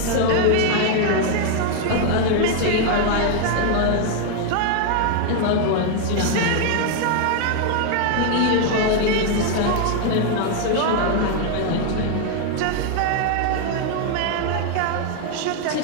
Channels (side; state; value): both; different; correlation 0.01